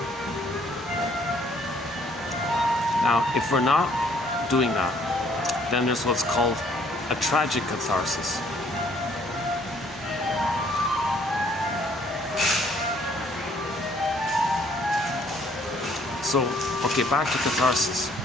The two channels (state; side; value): normal; both; correlation 0.63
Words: Now, if we're not doing that, then there's what's called a tragic catharsis. So, okay, back to catharsis.